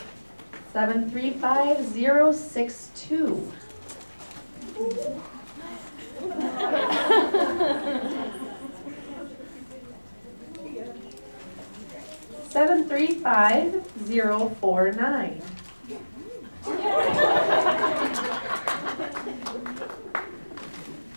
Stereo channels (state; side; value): inverted; both; correlation -1.00